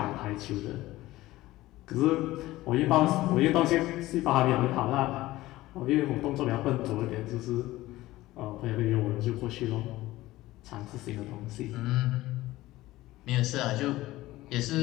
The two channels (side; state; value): right; quieter; 17.3 dB